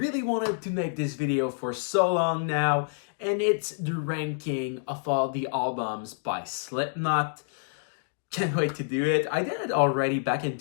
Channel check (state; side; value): silent; right; digital silence